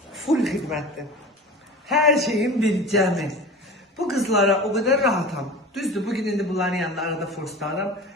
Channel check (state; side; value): normal; both; correlation 0.34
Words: full xidmətdir. Hər şeyin bir cəmi. Bu qızlara o qədər rahatam. Düzdür, bugün indi bunların yanında arada forslarım.